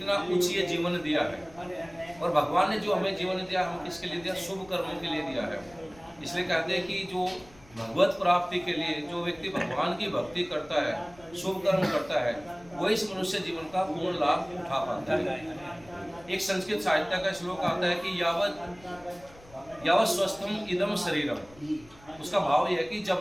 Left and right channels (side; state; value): left; noise; rumble, 24 dB below the sound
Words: उच्च जीवन दिया है, और भगवान ने जो हमें जीवन दिया हम किसके लिए दिया? शुभ कर्मों के लिए दिया है। इसलिए कहते हैं कि जो भगवत प्राप्ति के लिए जो व्यक्ति भगवान की भक्ति करता है, शुभ कर्म करता है, वो इस मनुष्य जीवन का पूर्ण लाभ उठा पाता है। एक संस्कृत साहित्य का श्लोक आता है कि यावत स्वस्थम इदम शरीरम। उसका भाव यह है कि